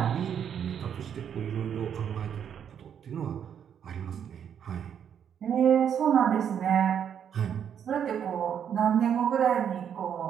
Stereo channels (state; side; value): quieter; left; 8.5 dB